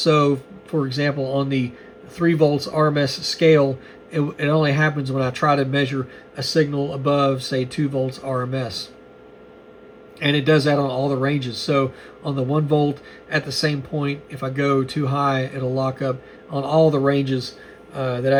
for example, on the 3 volts RMS scale, it only happens when I try to measure a signal above, say, 2 volts RMS. And it does that on all the ranges. So on the 1 volt, at the same point, if I go too high, it'll lock up on all the ranges that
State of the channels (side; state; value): both; identical; correlation 1.00